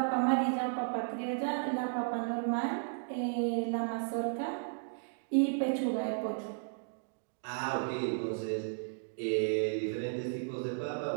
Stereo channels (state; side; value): silent; left; digital silence